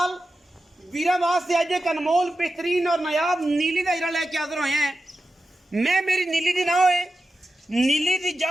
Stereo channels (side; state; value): both; normal; correlation 0.91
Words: वीरां वास्ते अज एक अनमोल बेहतरीन और नायाब नीली दा हीरा लैके हाज़र होए हैं। मैं मेरी नीली दी ना होए, नीली दी